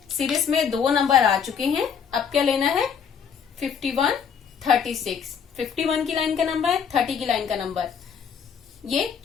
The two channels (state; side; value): quieter; right; 7.1 dB